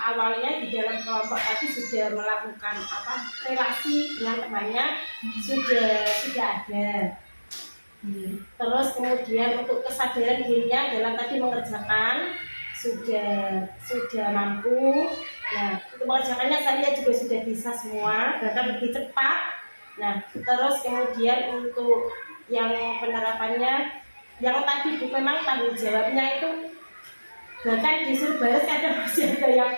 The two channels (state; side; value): inverted; both; correlation -1.00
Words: di dalam kelompok tadi sudah melakukan relasi dengan temannya sudah ada. Terus kemudian untuk kesadaran dirinya dalam tadi mengerjakan sudah mampu. Nah untuk mengerjakannya saya juga sudah bisa semua, bahkan lebih cepat. Nah terus kemudian untuk yang penerapannya yang tadi memang tanggung jawabnya itu bahkan disuruh baris, kadang masih ada yang